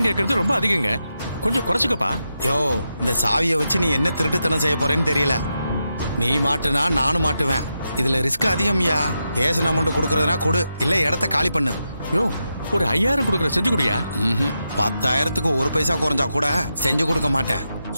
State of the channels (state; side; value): inverted; both; correlation -0.87